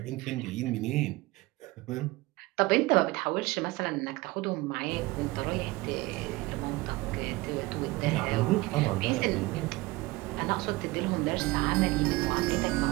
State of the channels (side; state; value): left; quieter; 21.3 dB